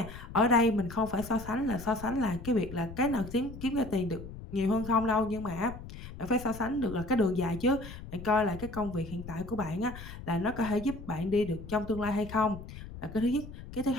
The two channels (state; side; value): noise; left; rumble, 12 dB below the sound